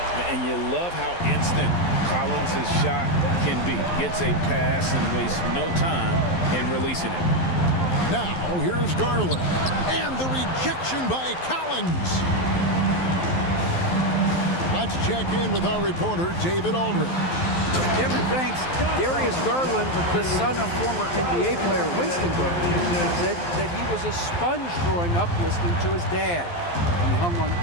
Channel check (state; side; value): late; right; 12 ms